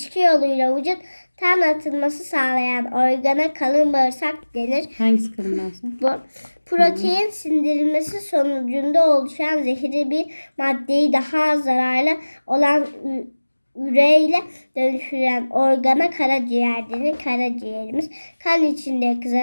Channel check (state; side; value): inverted; both; correlation -1.00